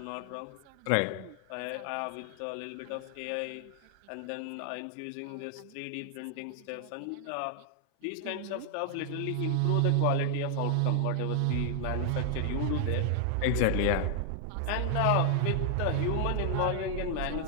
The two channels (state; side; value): different; both; correlation 0.00